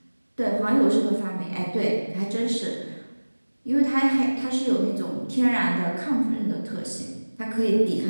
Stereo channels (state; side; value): inverted; both; correlation -1.00